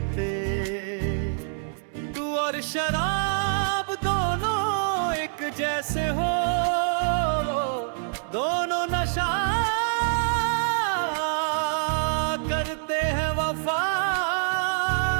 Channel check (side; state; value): left; silent; 61 dB below the other